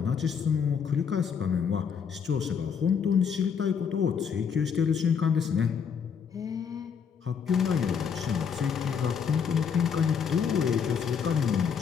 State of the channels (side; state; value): right; quieter; 6.9 dB